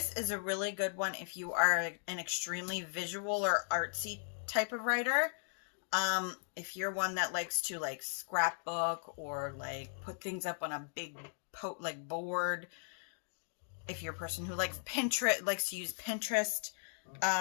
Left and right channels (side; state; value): right; silent; digital silence